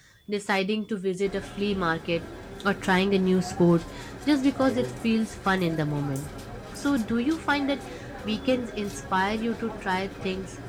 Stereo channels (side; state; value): both; identical; correlation 1.00